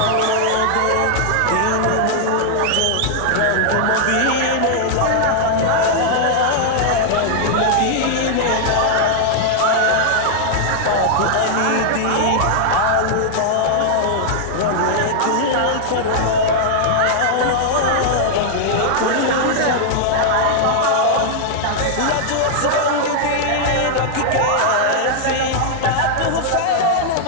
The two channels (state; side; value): different; both; correlation -0.01